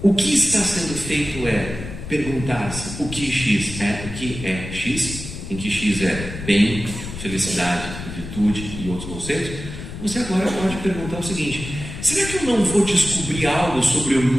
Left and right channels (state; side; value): noise; left; rumble, 9 dB below the sound